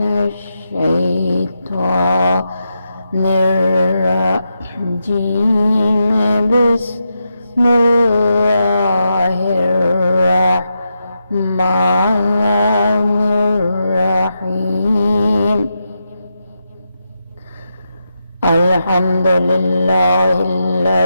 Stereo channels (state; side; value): inverted; both; correlation -0.86